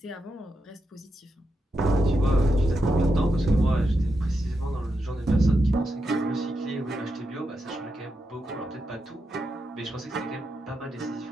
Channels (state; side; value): normal; both; correlation 0.85